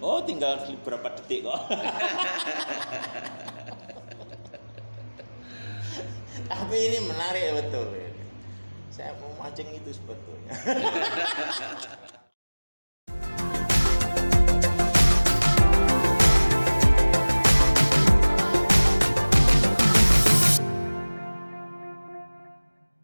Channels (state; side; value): inverted; both; correlation -1.00